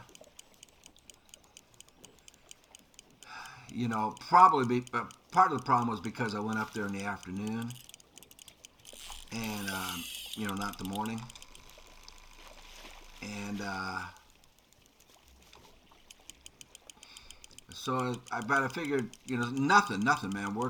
you know, probably part of the problem was because I went up there in the afternoon and you know, not the morning, and so I figured, you know, nothing, man.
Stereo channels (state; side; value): identical; both; correlation 1.00